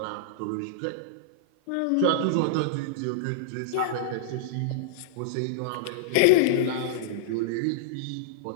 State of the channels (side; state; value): both; different; correlation -0.02